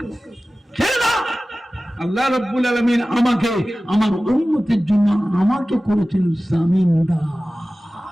আল্লাহ রাব্বুল আলামিন আমাকে আমার উম্মতের জন্য আমাকে করেছেন জামিনদার।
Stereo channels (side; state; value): both; normal; correlation 0.96